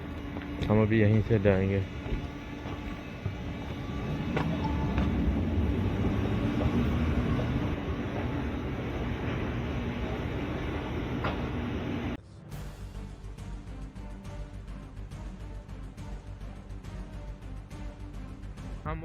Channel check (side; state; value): both; identical; correlation 1.00